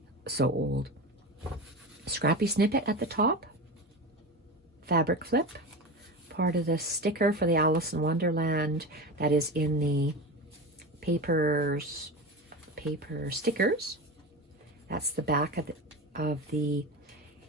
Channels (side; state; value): both; normal; correlation 0.25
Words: old. Scrappy snippet at the top. Fabric flip. Part of the sticker for the Alice in Wonderland that is in the paper stickers. That's the back of the